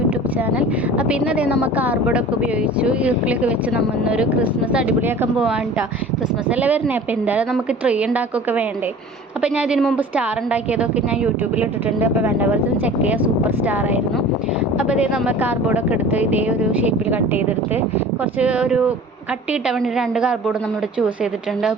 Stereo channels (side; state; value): both; normal; correlation 0.42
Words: channel. അപ്പോൾ ഇന്നതേ നമ്മൾ കാർഡ്ബോർഡൊക്കെ ഉപയോഗിച്ചു ഈർക്കിലൊക്കെ വെച്ച് നമ്മൾ ഇന്നൊരു ക്രിസ്മസ് അടിപൊളിയാക്കാൻ പോകാൻ കേട്ടോ. ക്രിസ്മസ് അല്ലേ വരുന്നത്, അപ്പോൾ എന്തായാലും നമുക്ക് ട്രീ ഉണ്ടാക്കുകയൊക്കെ വേണ്ടേ. അപ്പോൾ ഞാൻ ഇതിന് മുമ്പ് സ്റ്റാർ ഉണ്ടാക്കിയതൊക്കെ ഞാൻ യൂട്യൂബിൽ ഇട്ടിട്ടുണ്ട്. അപ്പോൾ വേണ്ടവർക്ക് ചെക്ക് ചെയ്യുക, സൂപ്പർ സ്റ്റാർ ആയിരുന്നു. അപ്പോൾ ഇതേ നമ്മൾ കാർഡ്ബോർഡൊക്കെ എടുത്ത് ഇതേ ഒരു ഷേപ്പിൽ കട്ട് ചെയ്തെടുത്ത് കുറച്ച് ഒരു കട്ട് കിട്ടാൻ വേണ്ടി 2 കാർഡ്ബോർഡ് നമ്മളിവിടെ ചൂസ് ചെയ്തിട്ടുണ്ട്.